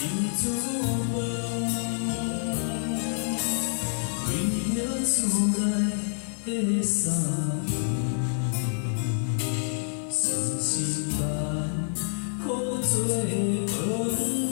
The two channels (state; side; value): silent; right; 60 dB below the other